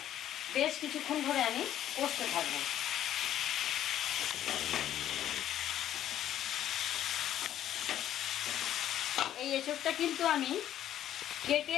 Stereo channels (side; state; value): right; quieter; 11.5 dB